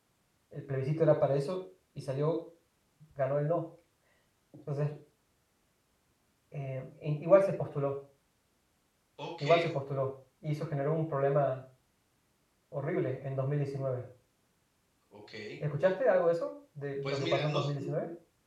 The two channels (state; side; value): identical; both; correlation 1.00